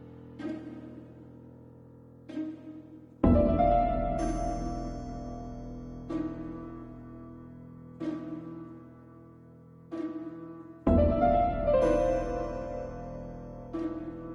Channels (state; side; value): identical; both; correlation 1.00